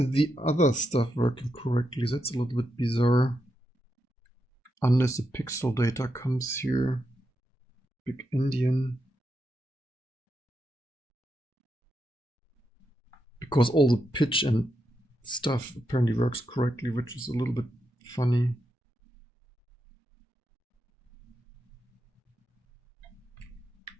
other stuff working correctly? That's a little bit bizarre. Unless the pixel data comes here. Big-Endian. Because all the pitch and stuff apparently works correctly, which is a little bit funny.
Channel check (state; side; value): normal; both; correlation 0.84